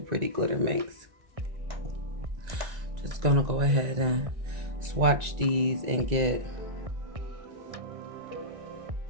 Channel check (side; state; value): left; late; 1.9 ms